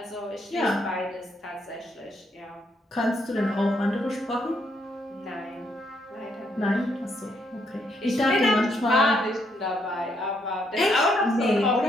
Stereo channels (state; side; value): normal; both; correlation 0.74